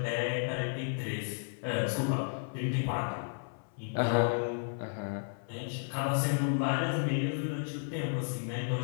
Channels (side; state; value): right; silent; 56 dB below the other